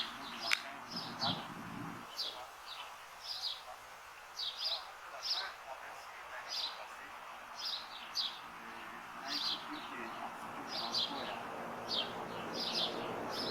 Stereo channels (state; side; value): identical; both; correlation 1.00